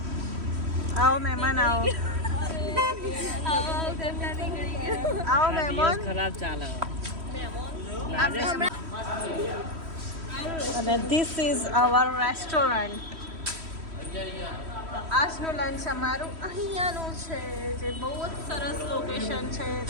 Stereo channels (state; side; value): late; left; 3.1 ms